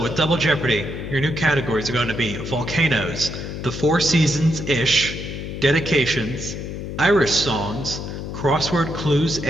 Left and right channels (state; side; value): noise; left; hum, 7 dB below the sound